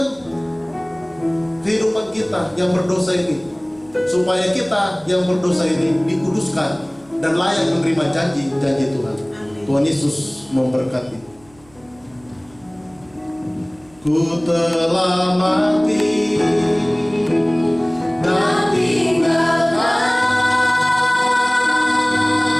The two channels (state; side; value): noise; right; hum, 29 dB below the sound